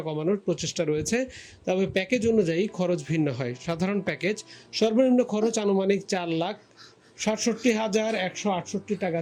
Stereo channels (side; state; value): both; identical; correlation 1.00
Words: কমানোর প্রচেষ্টা রয়েছে, তবে প্যাকেজ অনুযায়ী খরচ ভিন্ন হয়। সাধারণ প্যাকেজ সর্বনিম্ন খরচ আনুমানিক 4,67,168 টাকা